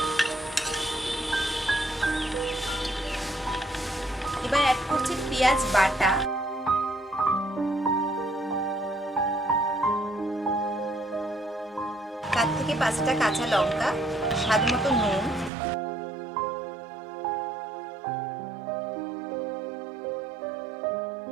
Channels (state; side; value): drops out; left; at 15.5 s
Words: এবার অ্যাড করছি পেঁয়াজ বাটা, 4 থেকে 5টা কাঁচা লঙ্কা, স্বাদ মতো নুন,